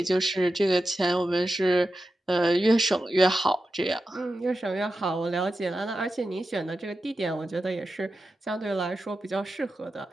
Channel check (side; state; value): both; normal; correlation 0.91